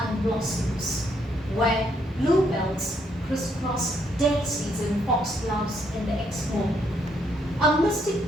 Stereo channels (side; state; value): both; normal; correlation 0.72